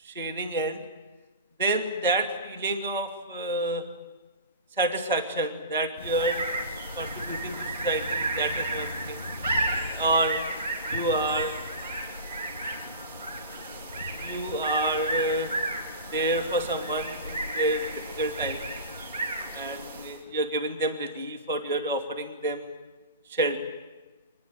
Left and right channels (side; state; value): both; inverted; correlation -0.31